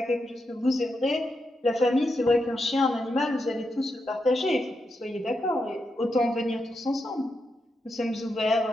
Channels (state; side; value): normal; both; correlation 0.85